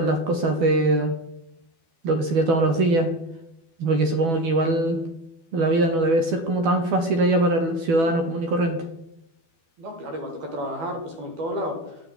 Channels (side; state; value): left; late; 12 ms